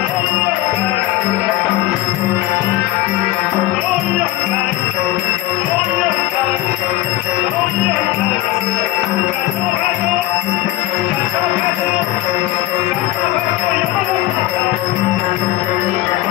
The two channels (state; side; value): quieter; right; 16.2 dB